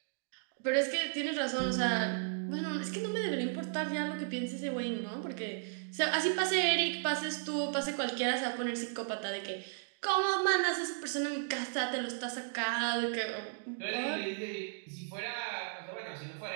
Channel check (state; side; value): silent; left; digital silence